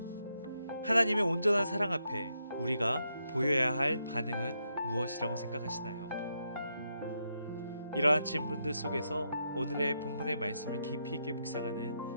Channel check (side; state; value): both; inverted; correlation -0.81